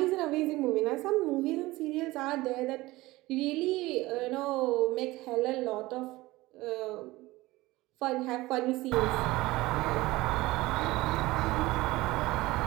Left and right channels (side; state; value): left; quieter; 19.4 dB